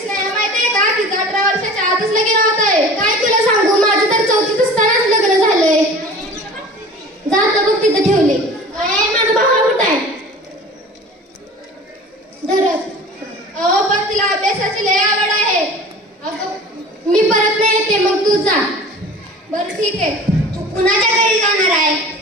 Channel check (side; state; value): both; normal; correlation 0.41